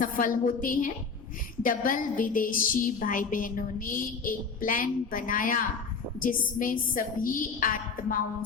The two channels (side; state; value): right; quieter; 5.1 dB